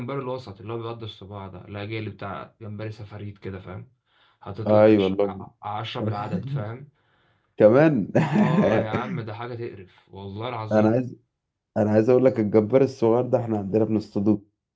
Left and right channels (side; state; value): both; identical; correlation 1.00